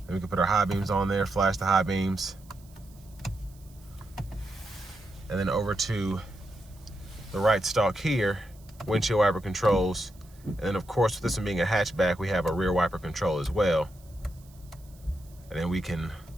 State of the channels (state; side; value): noise; right; hiss, 27 dB below the sound